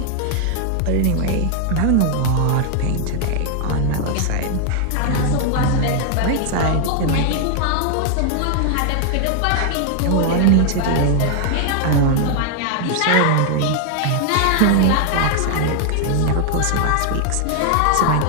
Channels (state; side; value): different; both; correlation 0.00